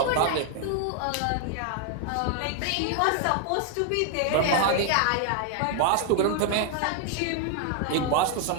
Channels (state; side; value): different; both; correlation 0.00